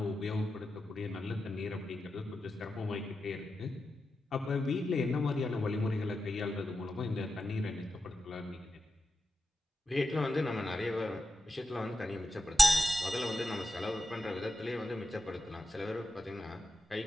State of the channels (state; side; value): normal; both; correlation 0.90